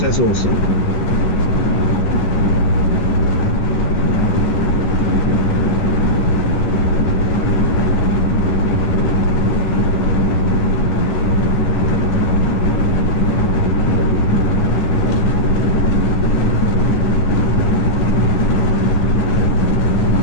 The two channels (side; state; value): right; late; 11 ms